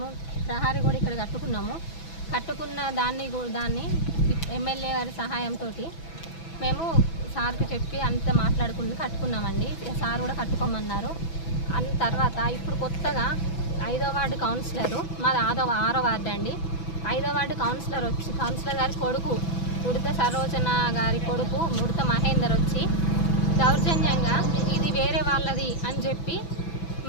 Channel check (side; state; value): right; late; 6.0 ms